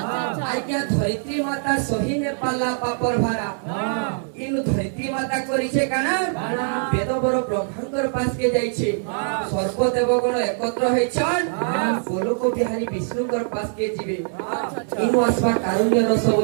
আজ্ঞা ধরিত্রী মাতা সহি নে পারলা পাপর ভাড়া কিন্তু ধরিত্রী মাতা করিছে কানা বেদ বড় ব্রহ্মাঙ্কর পাশকে যাইছে সর্বদেবগণ একত্র হইছন গোলক বিহারী বিষ্ণুঙ্কর পাশকে ଯିବେ ইনু আসবা কারুণ্য রসব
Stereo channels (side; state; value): left; silent; digital silence